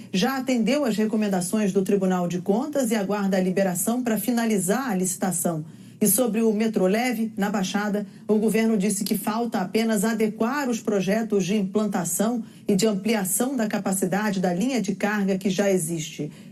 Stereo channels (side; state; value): both; identical; correlation 1.00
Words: já atendeu às recomendações do Tribunal de Contas e aguarda a liberação para finalizar a licitação. E sobre o metrô leve, na Baixada, o governo disse que falta apenas adequar os projetos de implantação e de ampliação da capacidade da linha de carga que já existe.